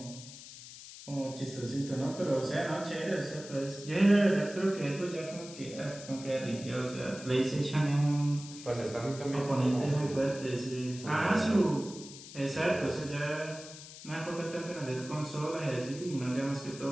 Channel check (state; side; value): noise; left; hiss, 15 dB below the sound